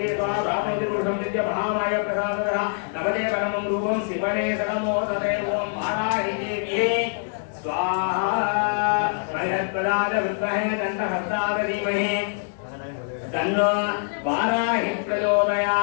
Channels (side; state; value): right; silent; digital silence